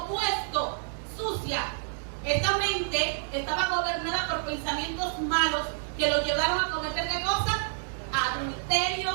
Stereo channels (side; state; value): left; silent; digital silence